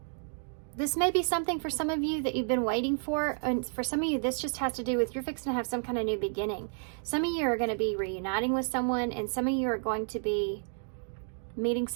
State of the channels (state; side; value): silent; left; digital silence